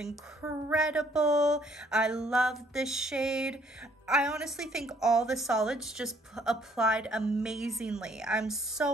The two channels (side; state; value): both; normal; correlation 0.64